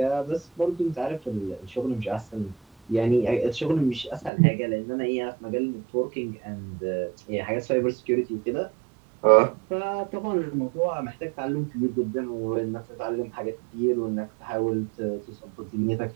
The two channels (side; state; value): left; drops out; at 4.3 s